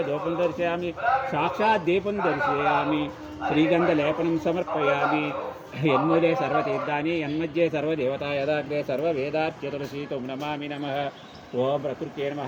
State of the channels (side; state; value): both; identical; correlation 1.00